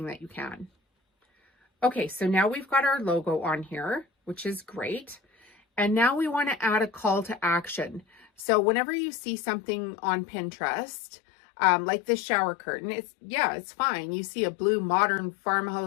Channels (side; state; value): right; drops out; at 8.5 s